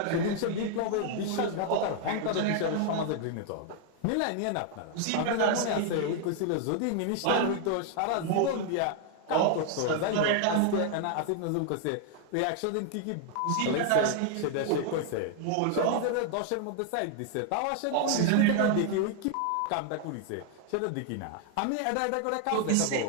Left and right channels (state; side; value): different; both; correlation 0.00